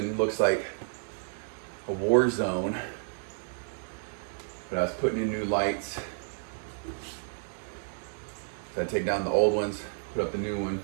looks like a war zone, but I was putting in new lights. So I take down the old ones, put up the new one,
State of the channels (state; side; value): silent; left; digital silence